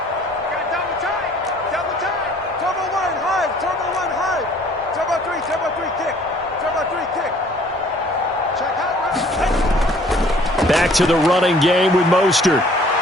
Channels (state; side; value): normal; both; correlation 0.56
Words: Back to the running game with Mostert.